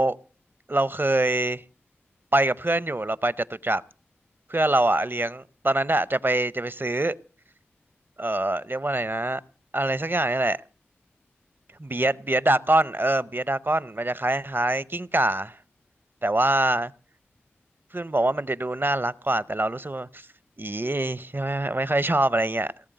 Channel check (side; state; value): both; normal; correlation 0.79